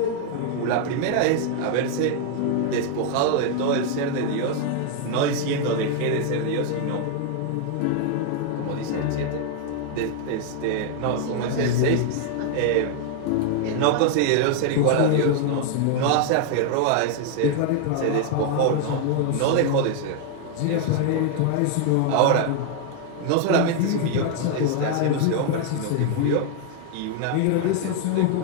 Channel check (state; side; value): different; both; correlation 0.00